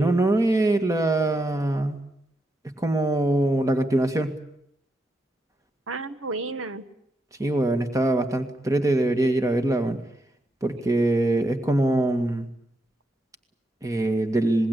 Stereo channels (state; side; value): normal; both; correlation 0.83